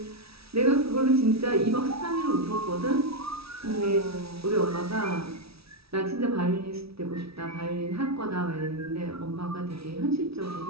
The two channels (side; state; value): left; late; 0.76 ms